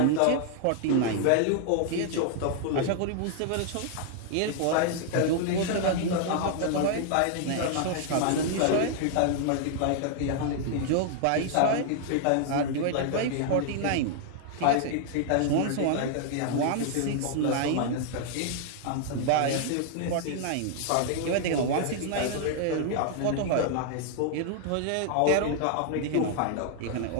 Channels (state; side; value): different; both; correlation 0.00